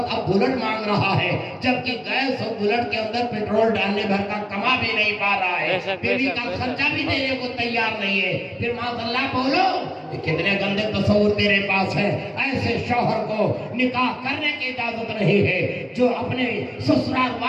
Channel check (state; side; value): identical; both; correlation 1.00